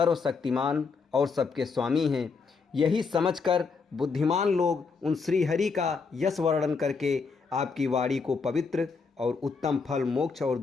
और सबके स्वामी हैं। यही समझकर बुद्धिमान लोग उन श्री हरि का यश वर्णन करके आपकी वाणी को पवित्र और उत्तम फल, मोक्ष और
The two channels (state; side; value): quieter; right; 4.8 dB